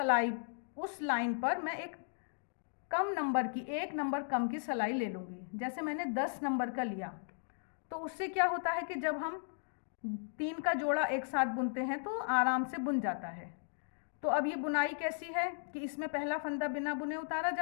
लाइन पर मैं एक कम नंबर की, 1 नंबर कम की सिलाई ले लूँगी। जैसे मैंने 10 नंबर का लिया, तो उससे क्या होता है कि जब हम 3 का जोड़ा एक साथ बुनते हैं तो आराम से बुन जाता है। तो अब ये बुनाई कैसी है कि इसमें पहला फंदा बिना बुने उतारा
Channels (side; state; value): right; silent; digital silence